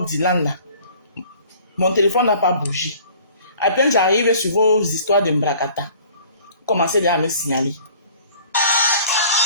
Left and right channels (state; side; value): inverted; both; correlation -0.51